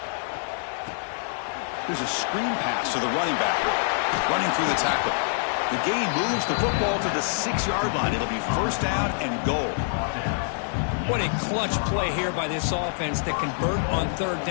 There's a screen pass to the running back. Running through the tackle. The gain moves the football to the 6-yard line. It'll be 1st down and goal. What a clutch play here by this offense to convert on 3rd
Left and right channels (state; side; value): silent; right; digital silence